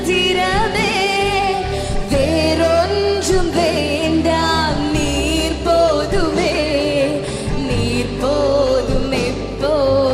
வேறொன்றும் வேண்டாம், நீர் போதுமே, நீர் போதும்,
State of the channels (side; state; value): both; identical; correlation 1.00